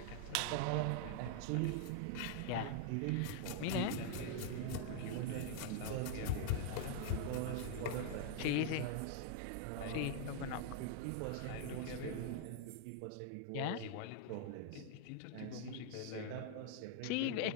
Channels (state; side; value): different; both; correlation 0.00